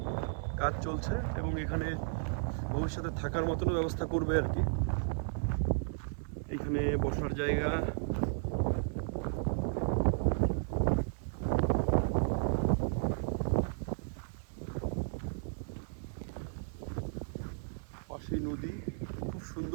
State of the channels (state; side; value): silent; left; digital silence